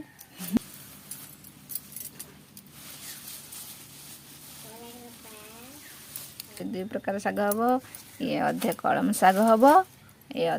दुई प्रकार शाग हम ये अधे कलम शाग हम ये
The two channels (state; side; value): identical; both; correlation 1.00